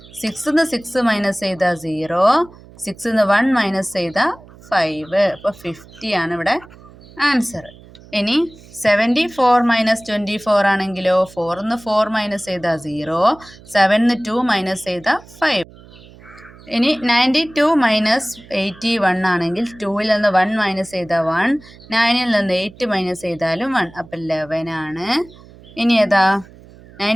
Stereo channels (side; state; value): right; noise; hum, 22 dB below the sound